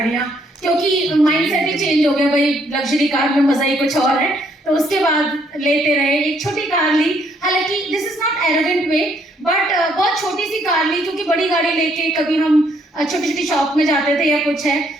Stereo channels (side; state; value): both; normal; correlation 0.69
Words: क्योंकि माइंडसेट ही चेंज हो गया भाई, लग्जरी कार में मजा ही कुछ और है। तो उसके बाद लेते रहे, एक छोटी कार ली, हालांकि this is not arrogant way, but बहुत छोटी सी कार ली, क्योंकि बड़ी गाड़ी लेके कभी हम छोटी छोटी शॉप में जाते थे या कुछ है,